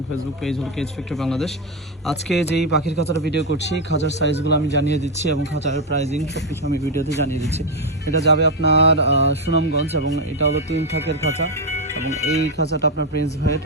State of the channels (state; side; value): normal; both; correlation 0.06